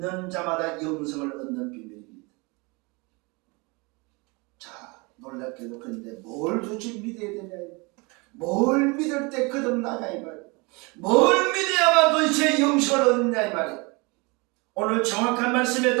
자마다 영생을 얻는 비밀입니다. 자, 놀랍게도 그런데 뭘 도대체 믿어야 되냐? 뭘 믿을 때 거듭나냐 이 말이에요. 뭘 믿어야만 도대체 영생을 얻느냐 이 말이에요. 오늘 정확한 말씀에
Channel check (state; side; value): quieter; left; 27.7 dB